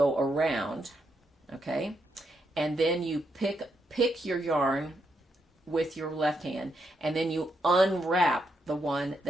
around, okay? And then you pick your yarn with your left hand, and then you unwrap the one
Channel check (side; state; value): both; normal; correlation 0.80